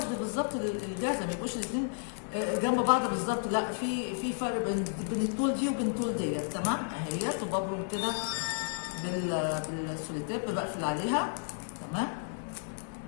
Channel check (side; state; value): right; silent; digital silence